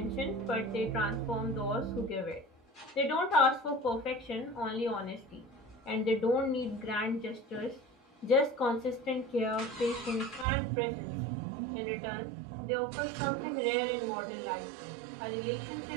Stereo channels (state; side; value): drops out; left; at 10.5 s